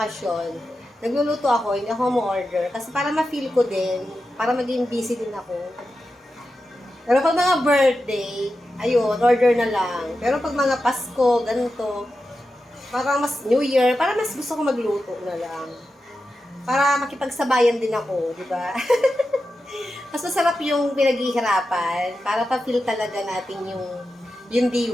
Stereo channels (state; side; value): normal; both; correlation 0.91